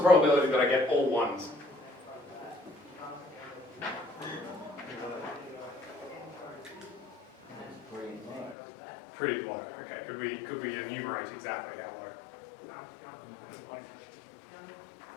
probability that I get all ones? Pretty low. Okay, could we enumerate exactly how low?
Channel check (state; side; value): drops out; right; at 8.6 s